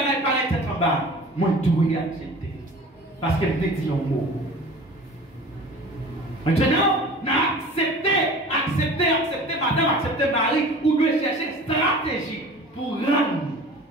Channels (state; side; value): normal; both; correlation 0.41